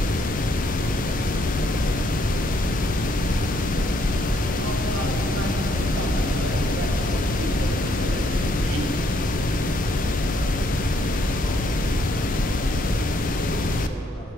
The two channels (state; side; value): normal; both; correlation 0.71